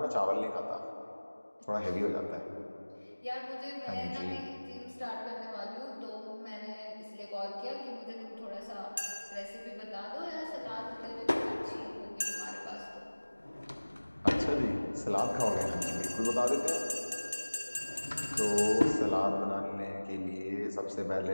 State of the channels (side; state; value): both; inverted; correlation -1.00